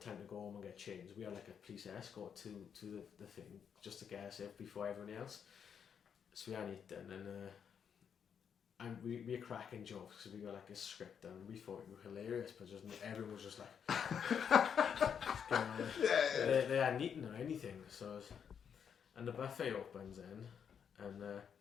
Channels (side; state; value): right; quieter; 7.6 dB